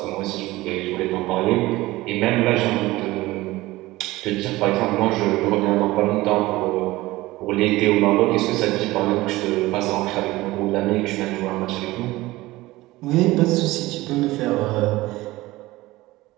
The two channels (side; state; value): left; quieter; 18.8 dB